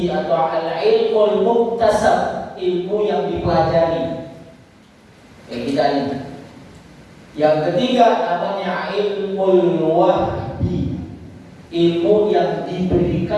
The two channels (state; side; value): identical; both; correlation 1.00